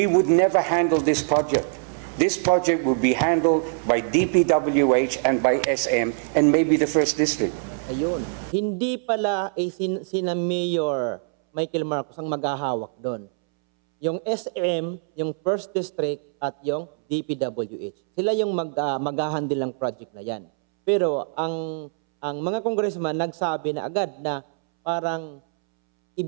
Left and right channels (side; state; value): left; silent; 63 dB below the other